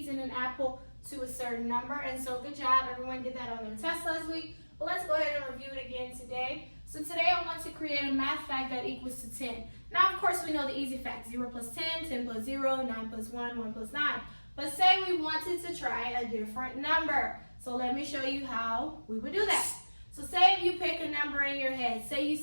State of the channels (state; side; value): inverted; both; correlation -1.00